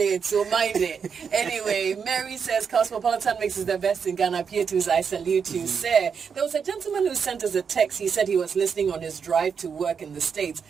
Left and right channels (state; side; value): quieter; left; 6.5 dB